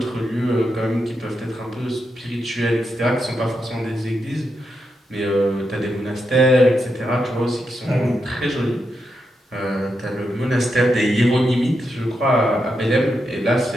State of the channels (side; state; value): both; normal; correlation 0.85